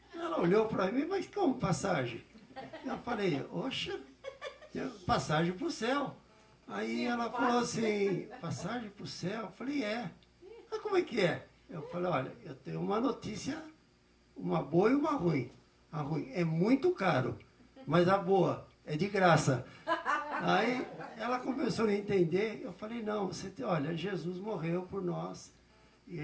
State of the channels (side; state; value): both; identical; correlation 1.00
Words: Ela olhou para mim, mas como passagem? Eu falei, oxa, passagem para o céu. Aí ela falou assim, passagem para o céu? Eu falei, é. Mas como é que é? Eu falei, olha, eu tenho uma notícia, uma boa e uma ruim. A ruim é muito caro, mas a boa é de graça. Aí ela começou a entender. Eu falei, não, olha, Jesus morreu por nós, e